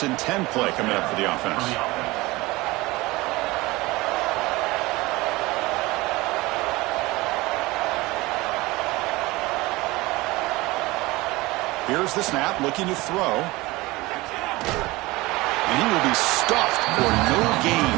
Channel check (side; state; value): left; quieter; 21.1 dB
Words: and 10 play coming up for the offense. Here's the snap. Looking to throw. And he will be stuffed for no gain.